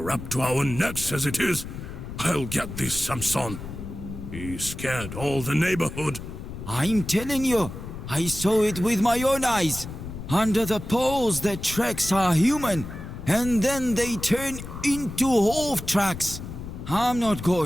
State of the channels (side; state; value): left; noise; rumble, 10 dB below the sound